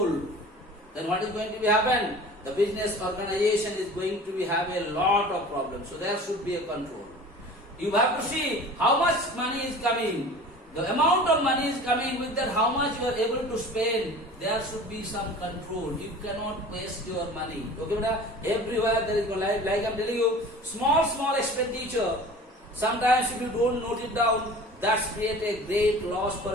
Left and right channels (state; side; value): normal; both; correlation 0.41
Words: then what is going to be happen? The business organization is going to be have a lot of problems. So there should be a control. You have to see how much money is coming. The amount of money is coming, with that how much you are able to spend. There should be some control. You cannot waste your money. Okay, beta? Everywhere there is, like I am telling you, small expenditure. Sometimes if you don't note it down, that's create a great loss for